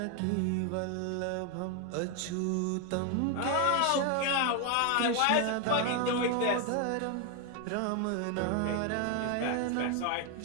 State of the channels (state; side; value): different; both; correlation 0.01